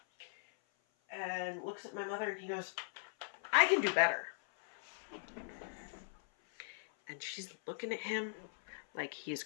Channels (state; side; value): silent; right; 51 dB below the other